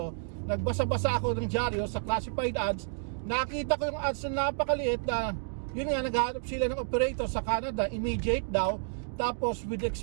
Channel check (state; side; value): silent; left; digital silence